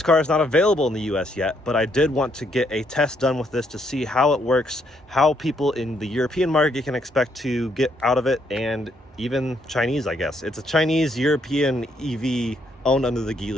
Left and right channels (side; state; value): both; normal; correlation 0.73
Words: car is not available in the US yet, but I did want to get a test done with this to see how it works, how people in the European market can expect to get out of it, and even Chinese, I guess. It's a Chinese-European EV owned under the